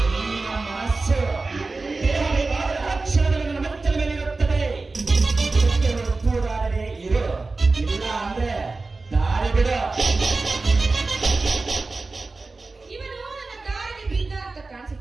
ಹೆಣ್ಣಿನ ಮನಸ್ಸು. ದೇಹ ಬೇಕಾದರೆ ಅಕ್ಷರದಲ್ಲಿ ನನ್ನ ಮೆಚ್ಚಲ ಮೇಲಿರುತ್ತದೆ. ಇದಕ್ಕೆ ಒಪ್ಪುವುದಾದರೆ ಇರು, ಇಲ್ಲ ಅಂದ್ರೆ ದಾರಿ ಬಿಡು. ಇವನು ನನ್ನ ದಾರಿಗೆ ಬಿದ್ದ ಅಂತ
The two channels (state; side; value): quieter; left; 3.6 dB